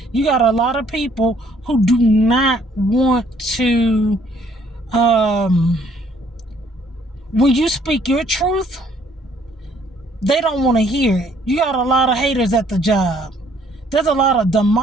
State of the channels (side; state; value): both; normal; correlation 0.63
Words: you got a lot of people who do not want to, when you speak your truth, they don't want to hear it. You got a lot of haters at the job. There's a lot of